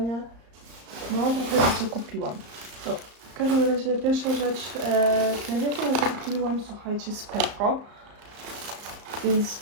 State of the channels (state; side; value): late; left; 34 ms